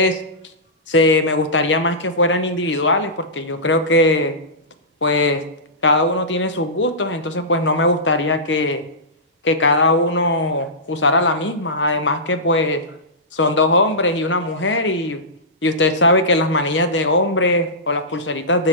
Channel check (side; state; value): both; normal; correlation -0.18